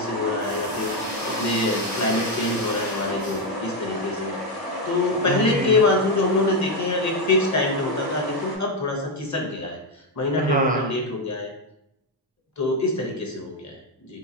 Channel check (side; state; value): both; normal; correlation 0.06